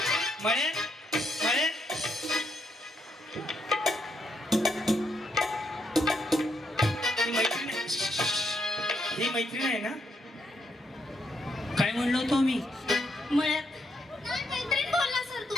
मळ्यात मळ्यात ही मैत्रीण आहे. ही मैत्रीण आहे ना? काय म्हणलो होतो मी? मळ्यात नाही, मैत्रीण बोलला सर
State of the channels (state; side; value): normal; both; correlation 0.77